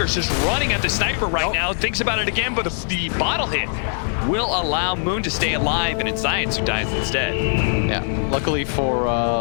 just running at the sniper right now. Thinks about it again, but the bottle hit will allow Moon to stay alive, and it's Zions who dies instead. Yeah, luckily for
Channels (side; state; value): right; silent; 58 dB below the other